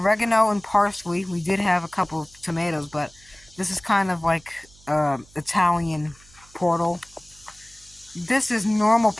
and parsley. We did have a couple of tomatoes, but this is kind of like Italian portal. This is normal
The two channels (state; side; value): noise; right; hum, 26 dB below the sound